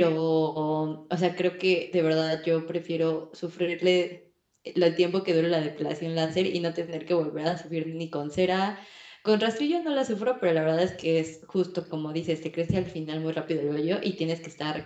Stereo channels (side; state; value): both; identical; correlation 1.00